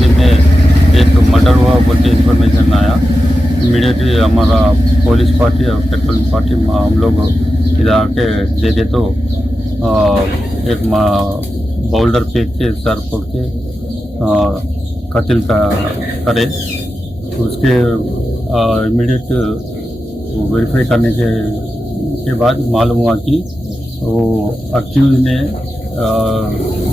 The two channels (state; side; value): normal; both; correlation 0.91